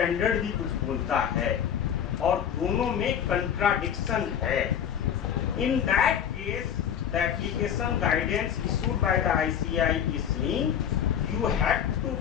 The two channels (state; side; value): quieter; right; 8.8 dB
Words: भी कुछ बोलता है और दोनों में कंट्राडिक्शन है. इन that case the application guidance issued by the ICI is saying you have to